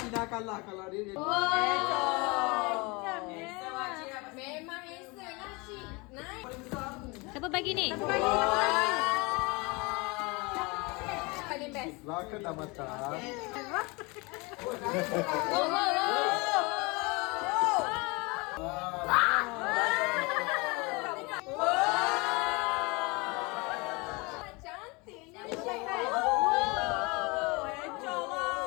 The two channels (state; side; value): quieter; right; 26.9 dB